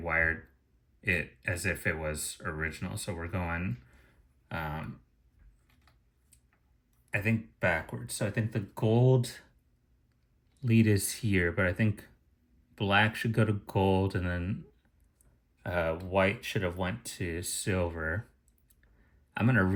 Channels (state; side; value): identical; both; correlation 1.00